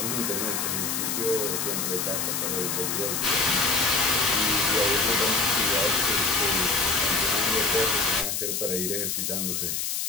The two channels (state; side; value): noise; left; hiss, 1 dB below the sound